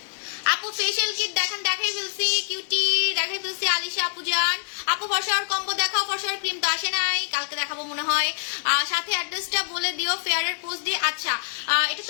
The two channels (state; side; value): silent; right; digital silence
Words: আপু ফেশিয়াল কিট দেখেন, দেখাই ফেলছি কিউটি, দেখাই ফেলছি আলিশা আপু জান। আপু ফর্সার কম্বো দেখাও, ফর্সার ক্রিম তো আসে নাই, কালকে দেখাবো মনে হয়। সাথে অ্যাড্রেসটা বলে দিও ফেয়ারের পোস্ট দিয়ে। আচ্ছা এটা